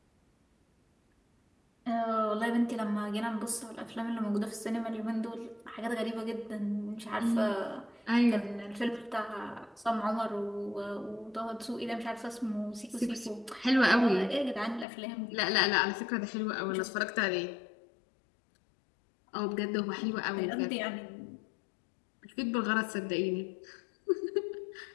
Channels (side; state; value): right; drops out; at 14.9 s